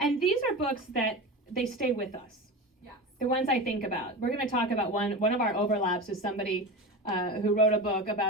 these are books that they stay with us. yes. The ones I think about. We're going to talk about one of our overlaps is somebody who wrote a book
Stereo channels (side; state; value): both; normal; correlation 0.26